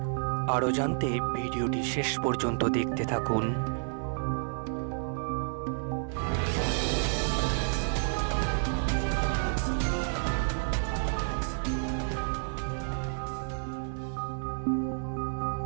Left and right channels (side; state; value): left; silent; 58 dB below the other